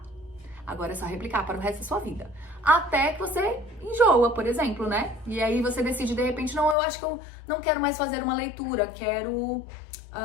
Agora é só replicar para o resto da sua vida. Até que você enjoa, por exemplo, né? E aí você decide, de repente, não, eu acho que eu não quero mais fazer uma leitura, quero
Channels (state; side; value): drops out; right; at 6.8 s